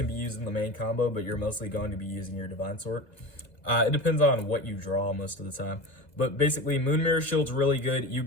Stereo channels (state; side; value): late; right; 2.0 ms